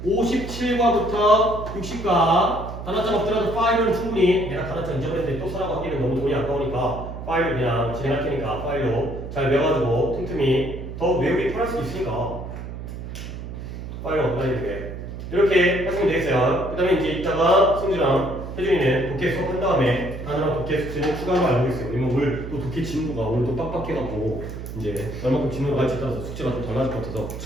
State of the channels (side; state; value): right; noise; hum, 9 dB below the sound